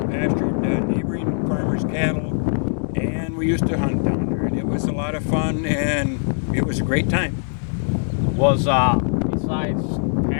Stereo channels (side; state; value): right; silent; digital silence